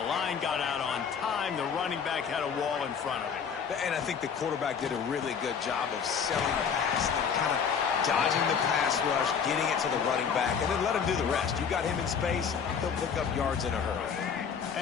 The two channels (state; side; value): quieter; right; 6.7 dB